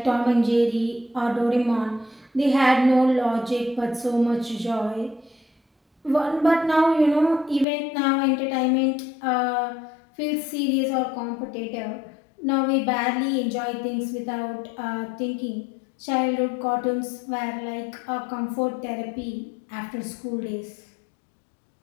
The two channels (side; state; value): right; drops out; at 7.7 s